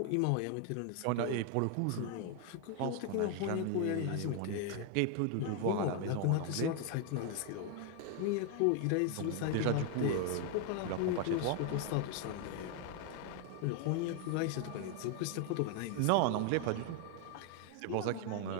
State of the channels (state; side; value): different; both; correlation 0.00